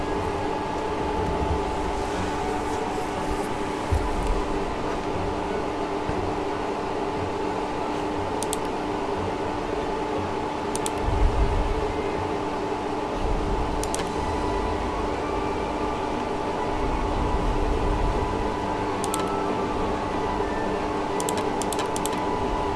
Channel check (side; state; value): both; identical; correlation 1.00